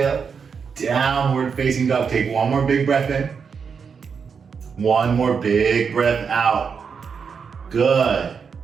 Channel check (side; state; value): left; quieter; 6.1 dB